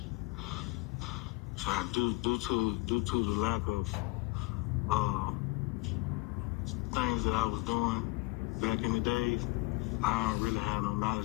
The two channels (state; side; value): quieter; right; 24.9 dB